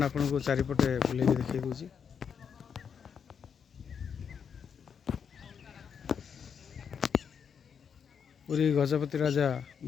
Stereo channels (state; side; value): quieter; right; 7.1 dB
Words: आपन को चारिपटे बुले देखी दूसरी। पुरी गजपति राजा